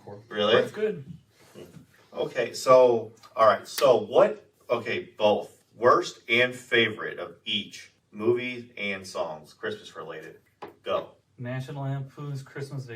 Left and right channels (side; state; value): both; identical; correlation 1.00